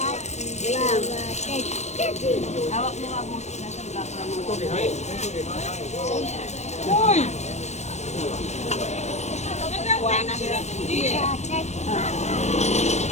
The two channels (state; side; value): late; right; 0.32 ms